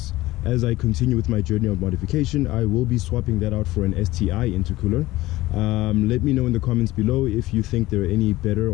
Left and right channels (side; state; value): right; quieter; 17.8 dB